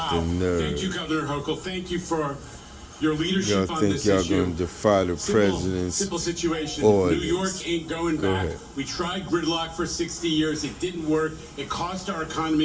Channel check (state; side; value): identical; both; correlation 1.00